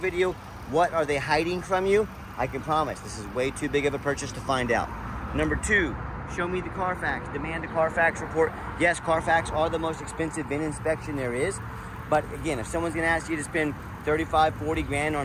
what are they hiding from you? I can promise this is way too big of a purchase to find out. Number 2, show me the Carfax. Demand a Carfax report. Yes, Carfax are the most expensive VIN inspection there is. But again, if someone's gonna ask you to spend 35, 40 grand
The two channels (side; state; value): both; identical; correlation 1.00